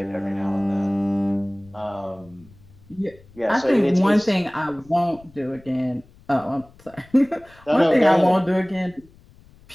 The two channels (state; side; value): noise; left; rumble, 26 dB below the sound